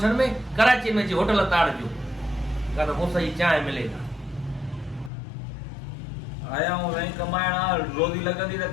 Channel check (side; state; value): right; drops out; at 5.1 s